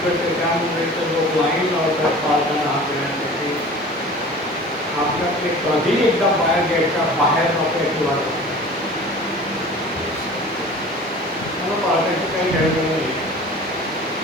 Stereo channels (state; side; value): normal; both; correlation 0.42